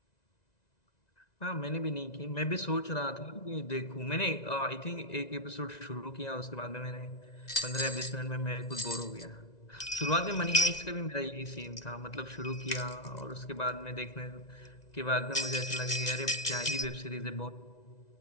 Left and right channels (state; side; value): late; right; 1.9 ms